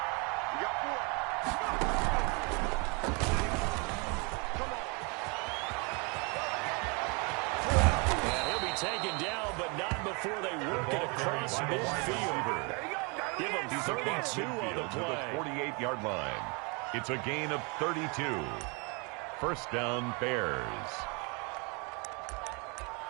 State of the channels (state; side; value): quieter; left; 31.8 dB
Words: Taken down, but not before they work it across midfield. Give them 32 on the play. 48-yard line. It's a gain of 32. First down, Bears.